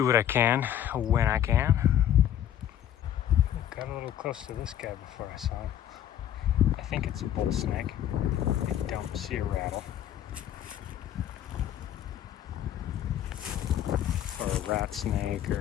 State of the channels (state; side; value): quieter; right; 10.9 dB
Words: what I can when I can. Got a little close to this guy before I saw him. I think it's a bull snake. I don't see a rattle. Or a rat snake,